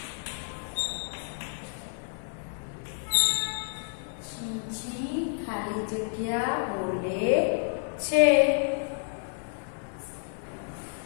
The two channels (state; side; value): silent; right; digital silence